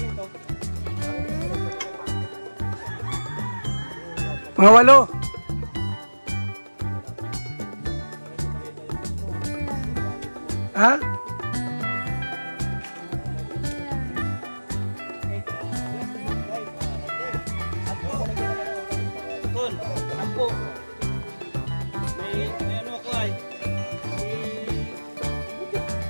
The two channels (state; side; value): inverted; both; correlation -1.00